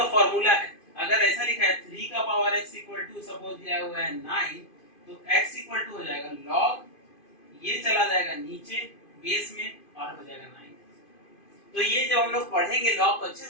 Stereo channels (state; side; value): late; right; 2.5 ms